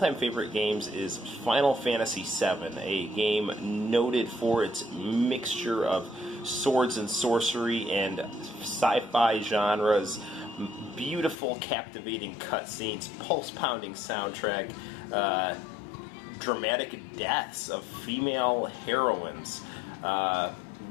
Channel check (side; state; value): right; drops out; at 11.4 s